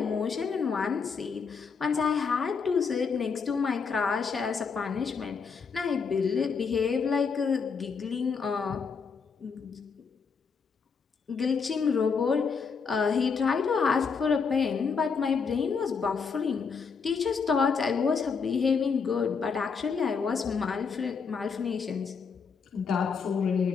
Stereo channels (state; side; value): quieter; right; 5.6 dB